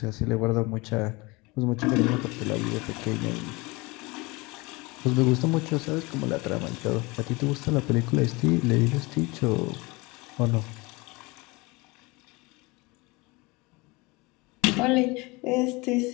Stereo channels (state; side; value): quieter; right; 24.8 dB